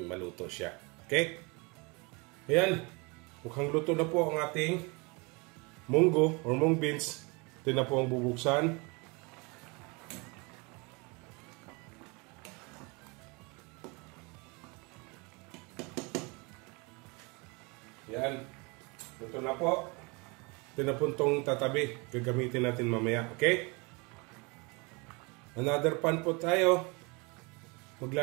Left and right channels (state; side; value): quieter; left; 28.7 dB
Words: maluto siya. Okay? Ayan. Mukhang luto na po ang ating munggo or mung beans. Ito na po ang bubuksan. Yan. Ito na po. Ito na po itong tatabi. Gagamitin natin mamaya. Okay? Another pan po tayo.